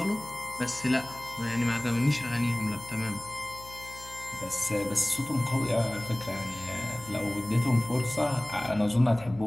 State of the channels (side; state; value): left; noise; hum, 19 dB below the sound